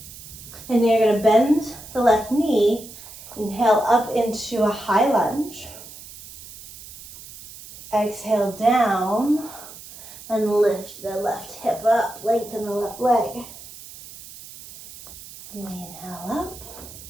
And then you're going to bend the left knee. Inhale up into a high lunge. Exhale down and lift the left hip up. Lengthen the left leg. And we inhale up.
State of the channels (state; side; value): noise; right; hiss, 16 dB below the sound